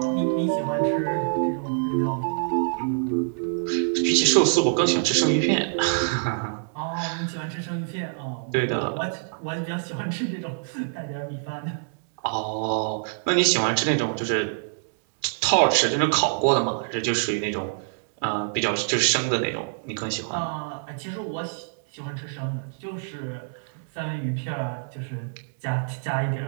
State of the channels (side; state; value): left; silent; 61 dB below the other